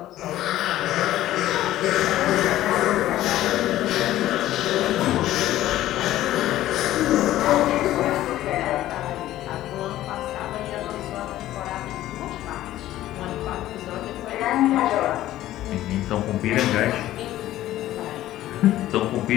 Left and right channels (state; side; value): quieter; right; 14.2 dB